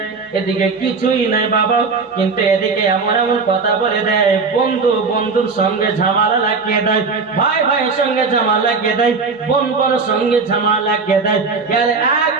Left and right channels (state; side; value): quieter; left; 4.6 dB